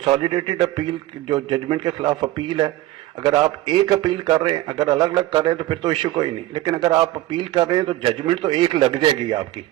अपील जो जजमेंट के खिलाफ अपील है, अगर आप एक अपील कर रहे हैं, अगर अलग अलग कर रहे हैं तो फिर तो इश्यू कोई नहीं, लेकिन अगर आप अपील कर रहे हैं तो जजमेंट तो एक लग जाएगी आपकी।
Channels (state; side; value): quieter; left; 16.0 dB